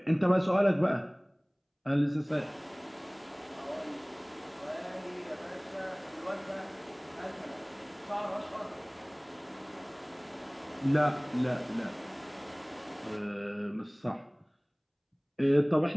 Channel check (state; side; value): identical; both; correlation 1.00